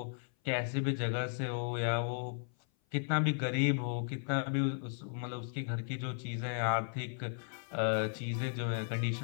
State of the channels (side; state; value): right; silent; 54 dB below the other